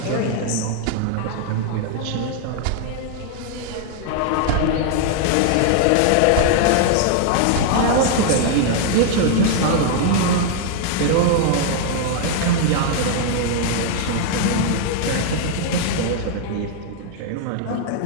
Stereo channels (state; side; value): different; both; correlation 0.00